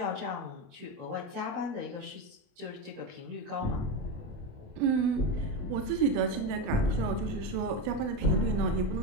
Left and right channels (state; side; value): late; left; 28 ms